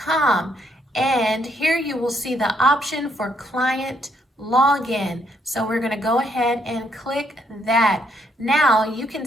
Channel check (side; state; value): both; normal; correlation 0.73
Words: And here you will see the option for client login. So we're going to go ahead and click that. Now you can